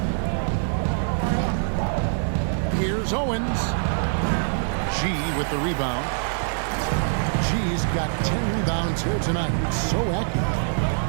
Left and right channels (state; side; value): silent; left; 62 dB below the other